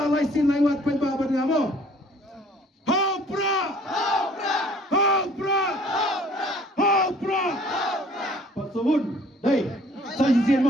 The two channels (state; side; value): normal; both; correlation 0.55